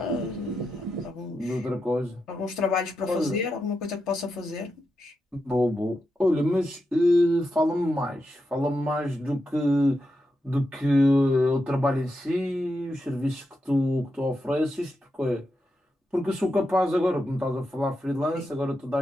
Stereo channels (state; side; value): normal; both; correlation 0.86